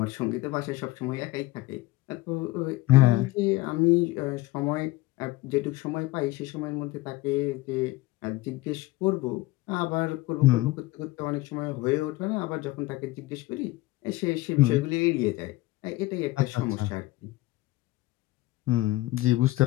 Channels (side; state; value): right; quieter; 18.7 dB